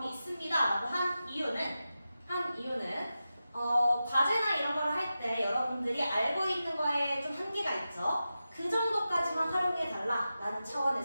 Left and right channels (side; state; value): both; inverted; correlation -0.92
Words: 있습니다 라고 한 이유는 과제나 이런 거를 할 때 여러분들이 알고 있는 거에 좀 한계가 있죠. 그 정도까지만 활용해 달라 라는